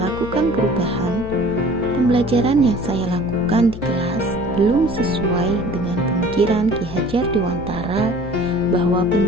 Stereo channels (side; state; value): left; noise; hum, 11 dB below the sound